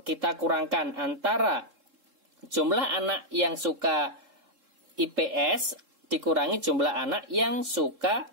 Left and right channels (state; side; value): late; left; 3.7 ms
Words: kita kurangkan antara jumlah anak yang suka IPS dikurangi jumlah anak yang suka